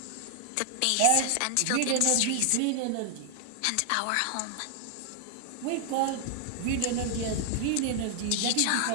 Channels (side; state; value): both; different; correlation 0.00